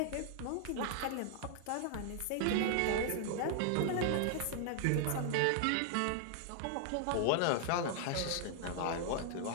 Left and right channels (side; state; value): both; different; correlation -0.01